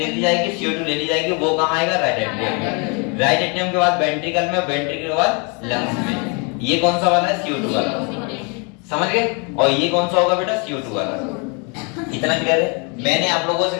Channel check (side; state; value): right; quieter; 34.0 dB